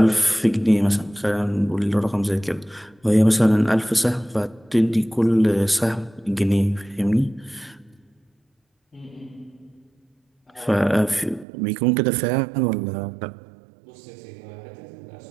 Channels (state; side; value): drops out; left; at 11.5 s